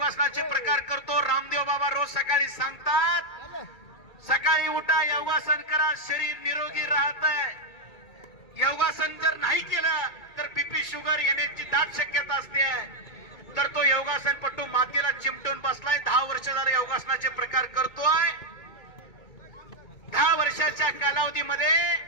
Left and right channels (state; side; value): late; right; 2.2 ms